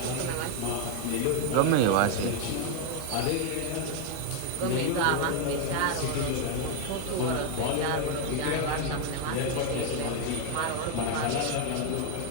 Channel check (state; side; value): different; both; correlation 0.01